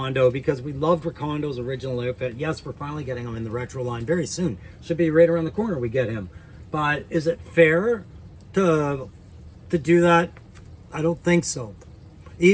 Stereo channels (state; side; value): identical; both; correlation 1.00